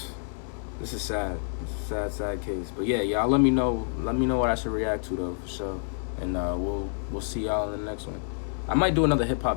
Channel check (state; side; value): silent; right; digital silence